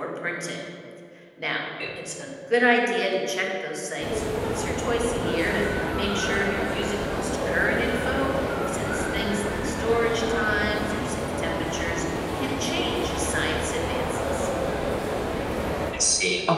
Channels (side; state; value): both; identical; correlation 1.00